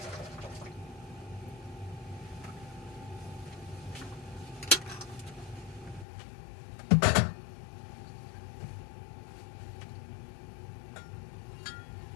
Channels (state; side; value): drops out; right; at 6.1 s